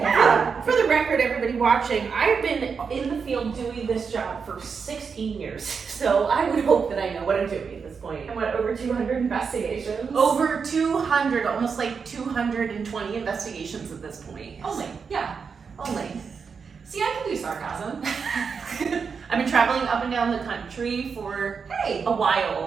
For the record, everybody watching, I've been in the field doing this job for 16 years. So I would hope that I know what I'm doing at this point. And what, over 200 investigations? Over 200, almost like 220 investigations at this point. Only, yeah. Only. See, I can do sarcasm. I've been traveling up and down the country for Hey. a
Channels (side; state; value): left; quieter; 5.8 dB